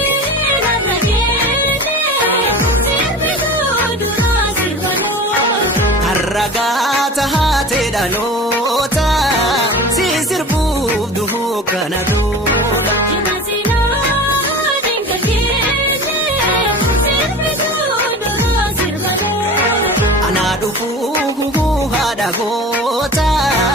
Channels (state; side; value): normal; both; correlation 0.36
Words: Ragata haate dhaloota si sirbuuf duhuu kana dura. Anaa dhufuu haadha goota